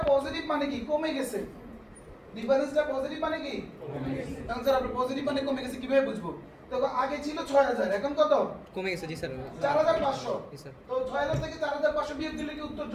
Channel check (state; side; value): identical; both; correlation 1.00